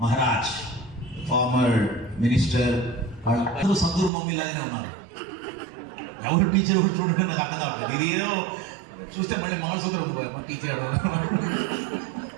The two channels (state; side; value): drops out; left; at 4.1 s